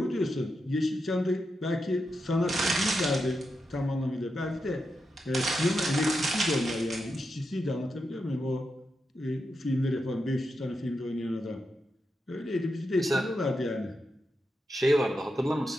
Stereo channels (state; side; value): normal; both; correlation 0.86